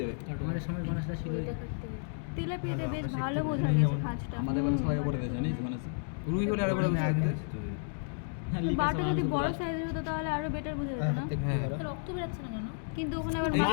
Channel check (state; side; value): silent; right; digital silence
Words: যাবে। আমাদের সময় মানুষরা ছিল তেলাপিয়াতে বেশ ভালো বোঝা গেছে খাঁজটা। আমাদের বাড়ি সবাই করে দেয় জানিস মানে রুই হলে আরো বড় বুঝতে পারতে। বাটা যদি বড় সাইজের হতো তাহলে আরো বেটার বোঝা যেত না? হ্যাঁ, রক্ত বেরাচ্ছে না কেন? কিন্তু ওখানে আবার